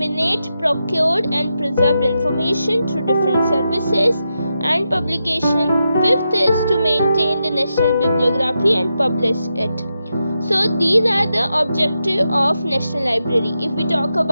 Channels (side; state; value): both; inverted; correlation -0.86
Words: procured and preserved information through different services and publication. 5th is to maintain the national bibliography and publish it. So these are the objective of National Library. If we talk